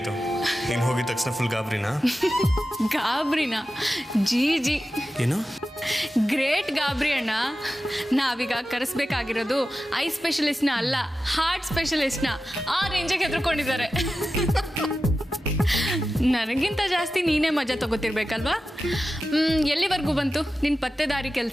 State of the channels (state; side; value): normal; both; correlation 0.93